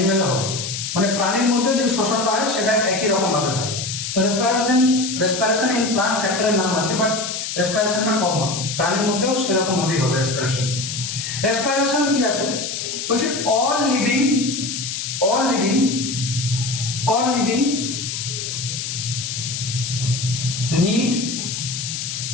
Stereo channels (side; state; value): left; noise; hiss, 5 dB below the sound